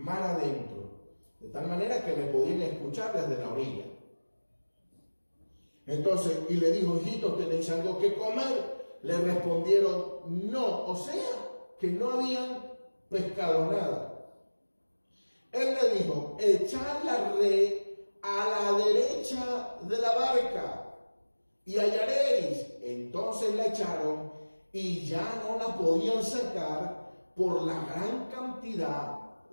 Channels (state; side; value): inverted; both; correlation -1.00